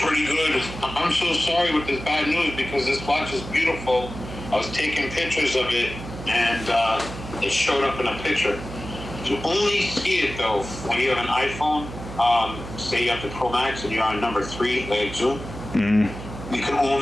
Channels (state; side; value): noise; right; hum, 11 dB below the sound